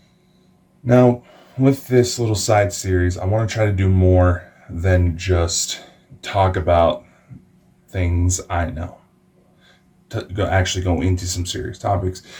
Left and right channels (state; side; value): identical; both; correlation 1.00